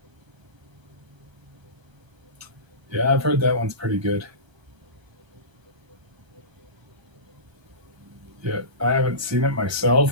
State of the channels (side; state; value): left; late; 1.3 ms